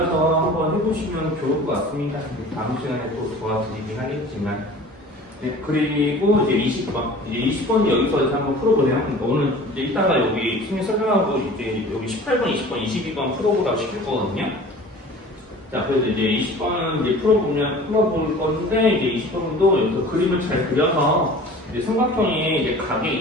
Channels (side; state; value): both; normal; correlation 0.43